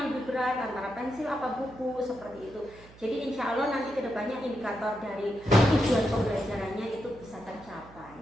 lebih berat antara pensil apa buku, seperti itu. Jadi insya Allah nanti kedepannya indikator dari tujuan pembelajarannya itu bisa tercapai.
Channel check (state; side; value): noise; right; hum, 22 dB below the sound